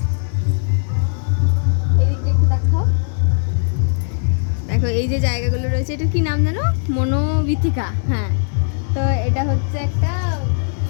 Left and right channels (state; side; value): silent; right; digital silence